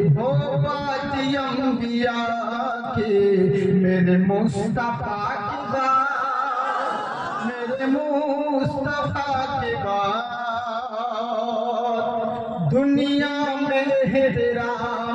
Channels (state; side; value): identical; both; correlation 1.00